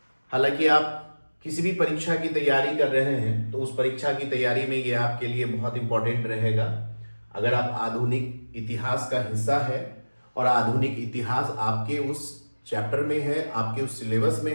हालांकि आप किसी भी परीक्षा की तैयारी कर रहे हैं तो उस परीक्षा की तैयारी में ये आपके लिए बहुत इंपॉर्टेंट रहेगा। अगर आप आधुनिक इतिहास का हिस्सा है और आधुनिक इतिहास आपके उस चैप्टर में है, आपके उस सिलेबस में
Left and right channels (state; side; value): inverted; both; correlation -1.00